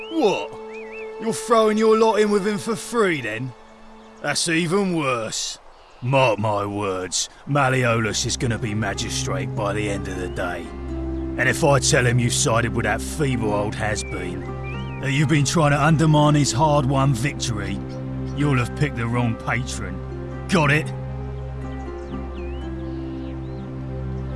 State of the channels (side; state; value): both; identical; correlation 1.00